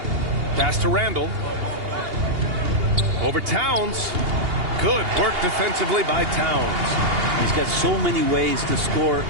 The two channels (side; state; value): left; late; 2.8 ms